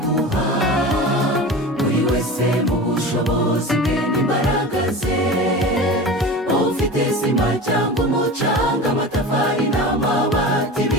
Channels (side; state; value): both; normal; correlation 0.32